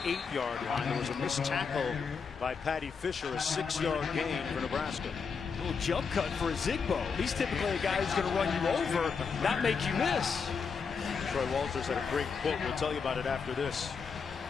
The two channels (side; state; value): right; quieter; 5.7 dB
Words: line. There was a missed tackle by Patty Fisher, a 6-yard gain for Nebraska. A little jump cut for a Zigbo. He's typically a guy who's going to run you over, not make you miss. Troy Walters had a great quote. We'll tell you about it after this.